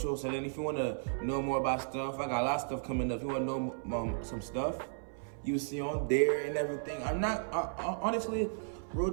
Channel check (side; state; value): left; silent; 55 dB below the other